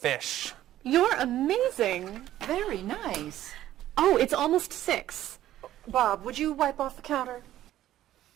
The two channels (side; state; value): left; quieter; 13.3 dB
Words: You're amazing. Very nice. Oh, it's almost 6. Bob, would you wipe off the counter?